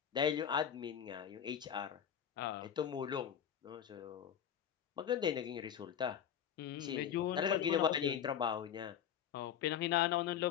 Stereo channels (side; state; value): right; quieter; 9.0 dB